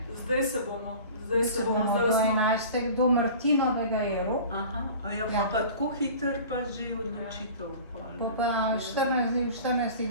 Zdaj se bomo. Do 11. do Martinovega je rok. Pa tako hiter pa že odločitev. Pa 14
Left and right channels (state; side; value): inverted; both; correlation -0.40